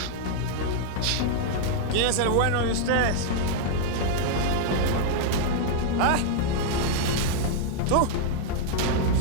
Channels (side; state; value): both; different; correlation 0.00